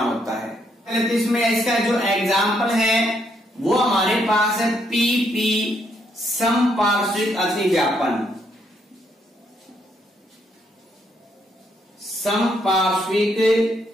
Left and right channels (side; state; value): both; normal; correlation 0.74